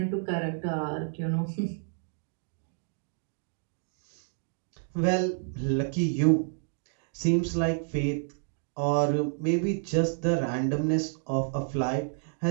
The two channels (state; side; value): silent; left; digital silence